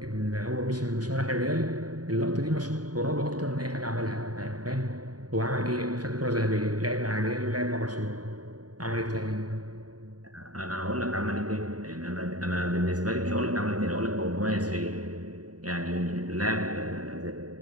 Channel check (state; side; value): late; left; 0.68 ms